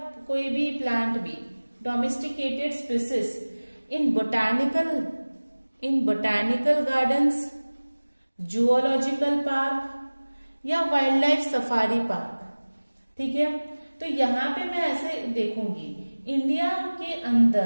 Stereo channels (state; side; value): inverted; both; correlation -1.00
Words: कोई भी प्लांट भी, domesticated species in botanical gardens, zoological park या वाइल्ड लाइफ सफारी पार्क, ठीक है। तो यहाँ पे मैं ऐसे देखूंगी, इंडिया के